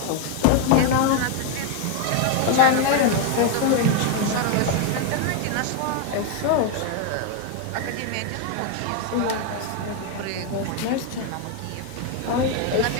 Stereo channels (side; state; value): both; different; correlation 0.01